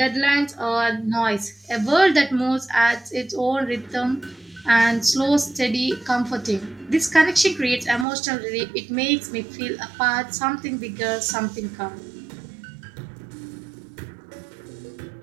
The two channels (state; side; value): drops out; left; at 8.1 s